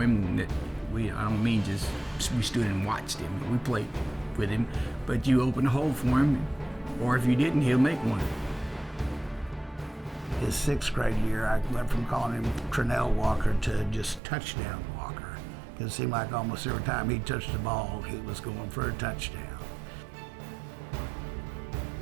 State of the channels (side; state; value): left; drops out; at 14.2 s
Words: him. I don't mean just we stood and watched him. We played with him. But you open a hole for him, or if you didn't, he'll make one. His 6th grade year, I went from calling him Trenell Walker to just touchdown Walker. It seemed like almost every time he touched the ball, he was going for a touchdown.